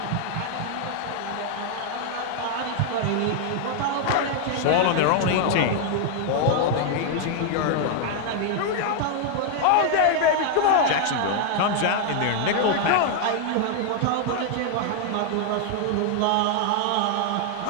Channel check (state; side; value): different; both; correlation 0.00